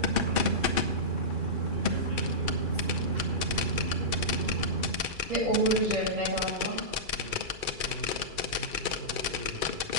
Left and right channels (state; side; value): late; left; 2.4 ms